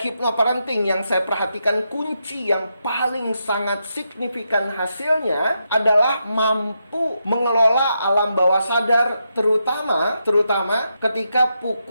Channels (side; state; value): both; inverted; correlation -0.84